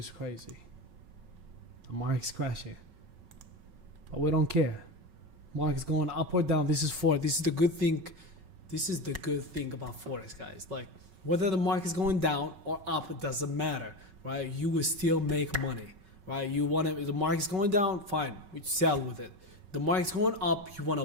crazy. The market's crashing, but we don't care. Market's going up or down. This is Forex. This is the good thing. This is the good thing about Forex, guys. Like whether the market's going down or up, it doesn't matter, right? You will still make money, right? You want to. The market's going down, fine. We sell with it. The market's going up, you want to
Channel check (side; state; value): left; late; 5.3 ms